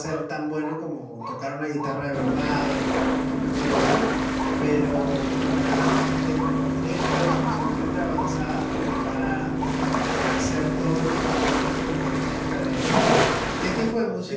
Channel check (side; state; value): both; identical; correlation 1.00